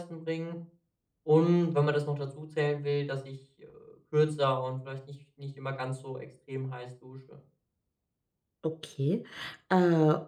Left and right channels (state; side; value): identical; both; correlation 1.00